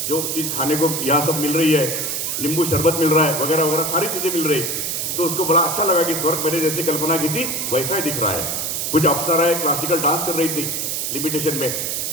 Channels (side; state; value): right; noise; hiss, 1 dB below the sound